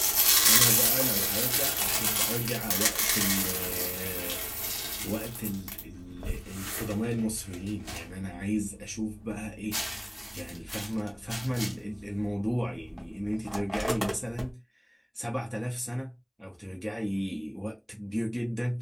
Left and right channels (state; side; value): identical; both; correlation 1.00